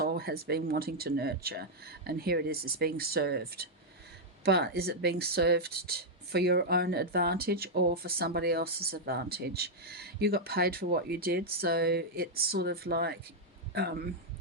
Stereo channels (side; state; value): both; normal; correlation -0.03